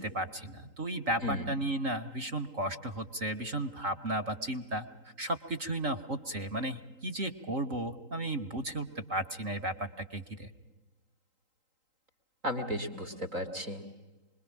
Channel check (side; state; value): left; late; 3.8 ms